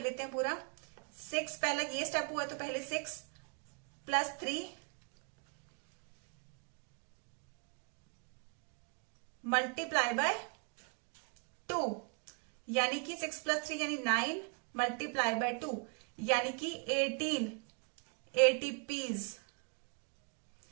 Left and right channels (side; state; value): left; quieter; 39.9 dB